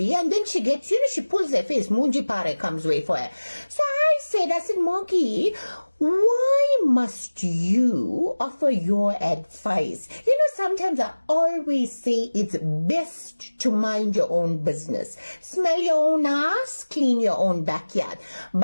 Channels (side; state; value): both; inverted; correlation -1.00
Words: and then she gets, she pulls her face, Munji Pare comes way for her. So I said, Monkey, why must you offer your advice? Sometimes I always say it's best to mind your own business. Smell your own ass, clean your own backyard.